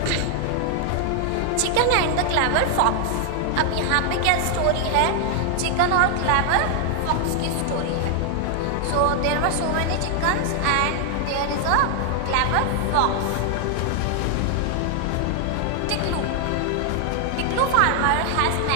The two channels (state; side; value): different; both; correlation 0.00